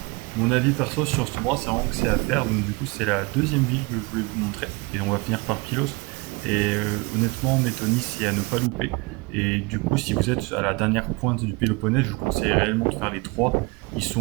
Mon avis perso sur cet endroit, c'est vraiment que c'est à faire, donc du coup c'est la deuxième ville que je voulais vous montrer, et on va finir par Pylos. Et honnêtement, Métony, c'est à ne pas louper. Et du coup, si vous êtes à la dernière pointe du Péloponnèse, je vous conseille réellement de faire les trois. Ils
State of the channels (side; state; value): left; quieter; 26.6 dB